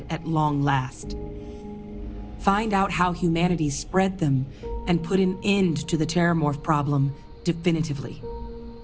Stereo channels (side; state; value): both; identical; correlation 1.00